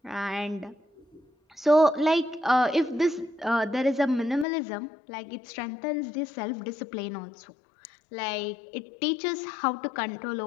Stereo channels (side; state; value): right; drops out; at 4.5 s